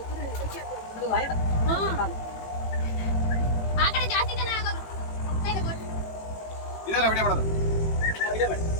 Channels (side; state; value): right; late; 18 ms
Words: ಆ ಕಡೆ ಜಾಸ್ತಿ ಜನ ಆಗೋದು ಇದೆಲ್ಲ ವಿಡಿಯೋ ಮಾಡೋದು